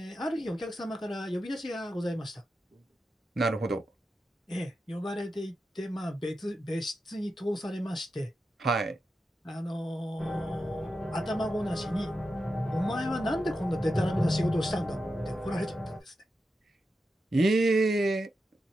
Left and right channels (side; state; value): both; normal; correlation 0.89